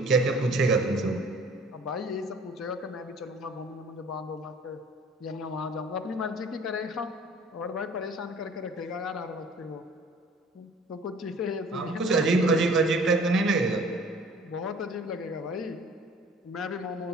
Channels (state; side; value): normal; both; correlation 0.50